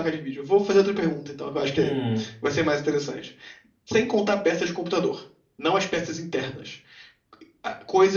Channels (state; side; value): identical; both; correlation 1.00